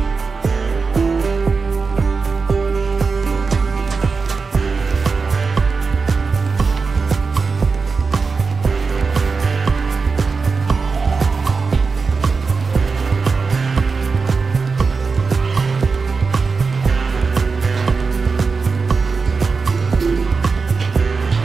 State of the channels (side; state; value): left; quieter; 4.6 dB